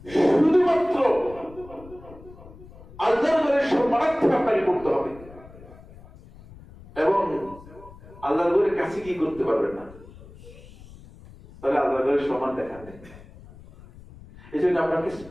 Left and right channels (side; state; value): left; noise; rumble, 20 dB below the sound